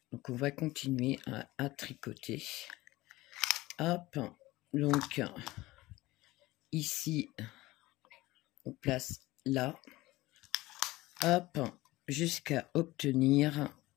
Donc, on va continuer à tricoter. Hop, donc, ici, on place là. Hop, jusqu'à obtenir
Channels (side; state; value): right; quieter; 18.9 dB